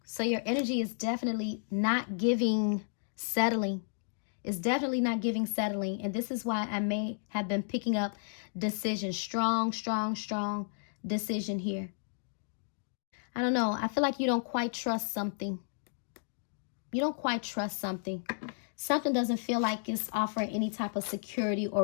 So your energy is definitely not giving settling. It's definitely not giving settling. And this is why I may have been picking up decision. Strong decision here. I don't know. I feel like you don't quite trust something. You don't quite trust something. Something doesn't feel like it's offering any type of security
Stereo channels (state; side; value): silent; right; digital silence